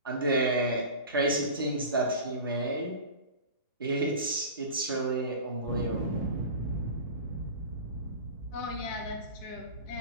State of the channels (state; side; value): inverted; both; correlation -0.33